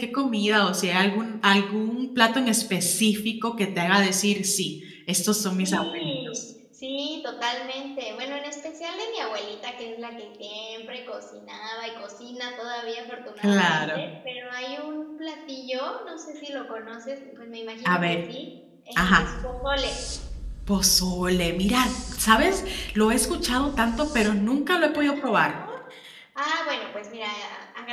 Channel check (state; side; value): identical; both; correlation 1.00